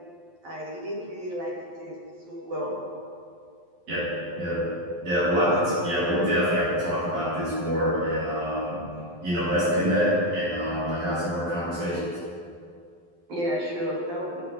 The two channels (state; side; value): late; left; 11 ms